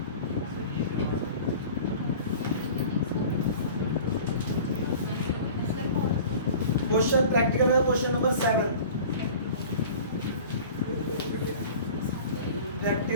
क्वेश्चन प्रैक्टिकल है क्वेश्चन नंबर 7,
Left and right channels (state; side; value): inverted; both; correlation -0.41